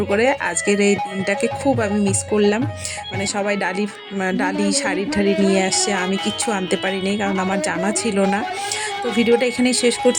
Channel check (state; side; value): identical; both; correlation 1.00